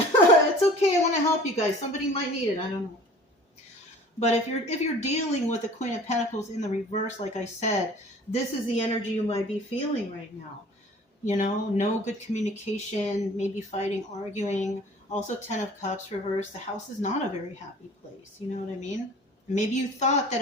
okay. I want to help you guys. Somebody might need it. I don't know. But if you're dealing with the Queen of Pentacles in the reverse, like I said, this is the energy you might be feeling right now. You know, no good communication, maybe fighting, arguing. Also, Ten of Cups reverse. The house is not a very happy place. You know what I mean? Maybe you thought that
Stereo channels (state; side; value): normal; both; correlation 0.47